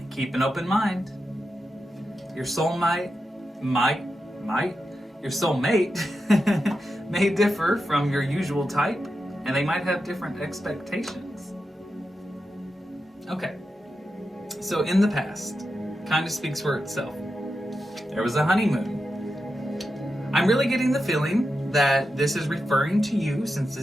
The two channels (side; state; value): both; normal; correlation 0.88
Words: keep an open mind. Your soulmate your soulmate may differ from your usual type, and they might have different expectations. Okay, so in the past, kind of speaks for itself. There was a honeymoon. I'm really getting the feeling that this is referring to you, since